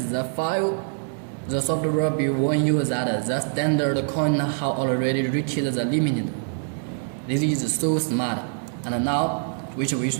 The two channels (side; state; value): left; silent; digital silence